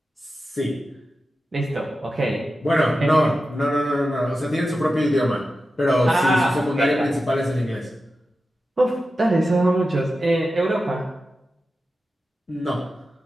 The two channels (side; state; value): both; normal; correlation 0.92